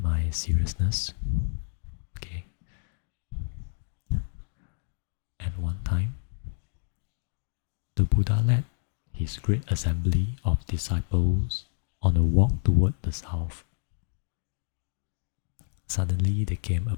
my seriousness. Okay. At one time, the Buddha led his great assembly of disciples on a walk toward the south. Suddenly they came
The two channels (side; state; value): right; silent; digital silence